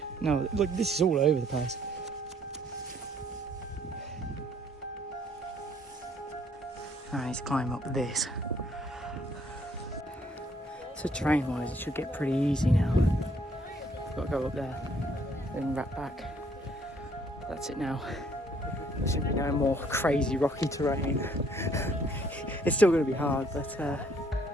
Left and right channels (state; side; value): normal; both; correlation 0.64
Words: No, look, this is all over the place. I need to climb up this. So terrain-wise, it should get pretty easy now. I've got to go up there, then wrap back. That's it now. There shouldn't be no more crazy rocky terrain. It's still going to be hard, but